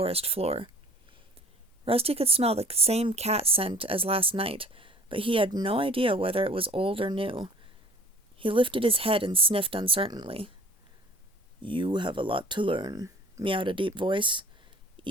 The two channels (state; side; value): normal; both; correlation 0.48